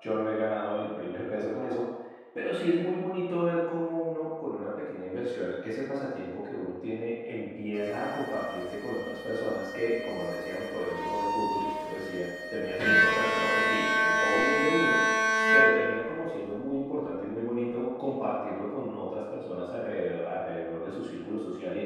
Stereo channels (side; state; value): both; identical; correlation 1.00